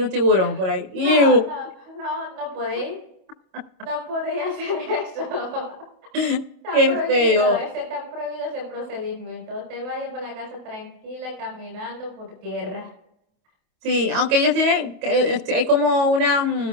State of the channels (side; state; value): left; late; 27 ms